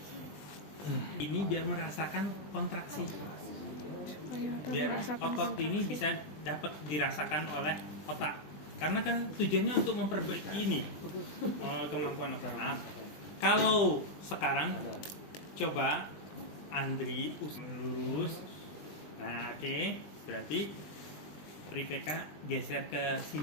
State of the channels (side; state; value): right; late; 20 ms